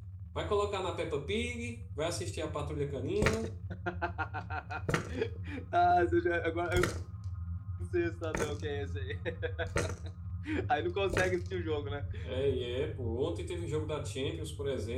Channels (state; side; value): identical; both; correlation 1.00